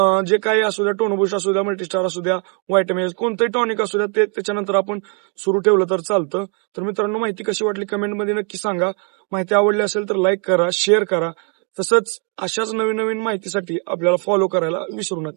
जे काही असू द्या टोनोबुस्ट असू द्या मल्टीस्टार असू द्या व्हायटामिन कोणतंही टॉनिक असू द्या ते त्याच्यानंतर आपण सुरू ठेवलं तर चालतं. तर मित्रांनो माहिती कशी वाटली कमेंटमध्ये नक्की सांगा. माहिती आवडली असेल तर लाईक करा, शेअर करा. तसंच अशाच नवीन नवीन माहितीसाठी आपल्याला फॉलो करायला विसरू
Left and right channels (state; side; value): quieter; left; 39.3 dB